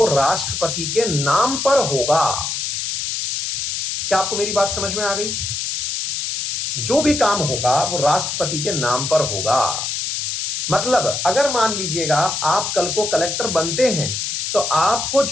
राष्ट्रपति के नाम पर होगा। क्या आपको मेरी बात समझ में आ गई? जो भी काम होगा वो राष्ट्रपति के नाम पर होगा। मतलब अगर मान लीजिएगा आप कल को कलेक्टर बनते हैं तो आपको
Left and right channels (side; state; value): left; noise; hiss, 2 dB below the sound